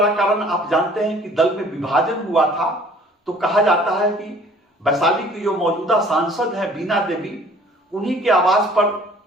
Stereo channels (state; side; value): normal; both; correlation 0.54